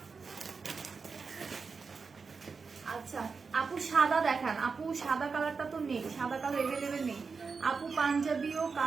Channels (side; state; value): left; quieter; 5.0 dB